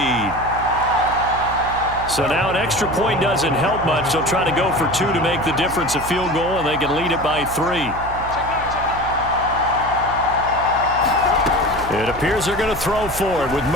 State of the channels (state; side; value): noise; right; hum, 12 dB below the sound